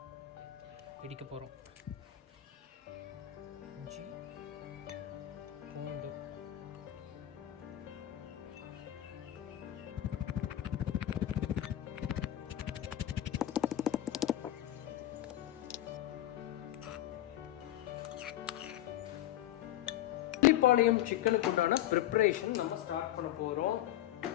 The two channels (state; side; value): quieter; right; 13.2 dB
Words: இடிக்க போகிறோம். இஞ்சி, பூண்டு, பள்ளிப்பாளையம் சிக்கனுக்கு உண்டான ப்ரிப்பரேஷன் நம்ம ஸ்டார்ட் பண்ண போகிறோம்.